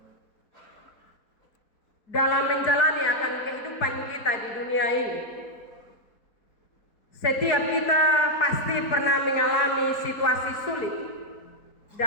dalam menjalani akan kehidupan kita di dunia ini, setiap kita pasti pernah mengalami situasi sulit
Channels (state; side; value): late; right; 4.6 ms